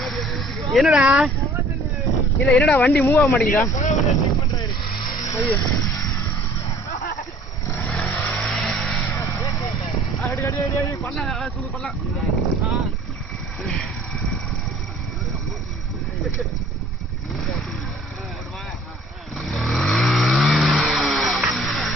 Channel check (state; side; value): normal; both; correlation 0.53